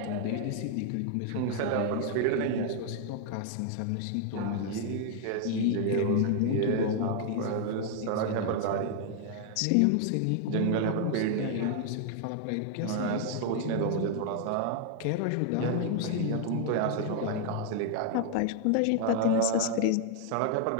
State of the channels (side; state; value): both; different; correlation 0.00